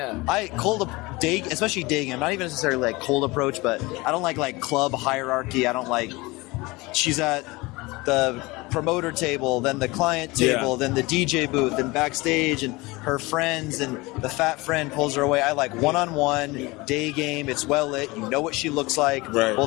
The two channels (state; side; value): quieter; right; 22.9 dB